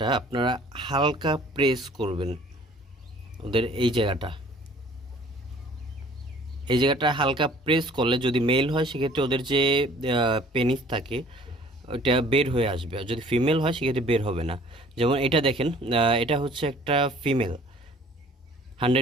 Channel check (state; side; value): normal; both; correlation 0.53